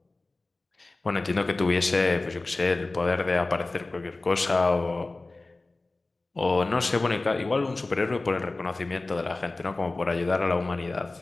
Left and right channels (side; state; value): right; quieter; 3.2 dB